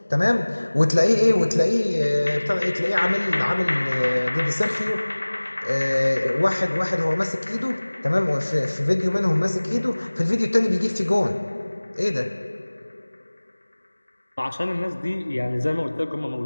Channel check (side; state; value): both; inverted; correlation -1.00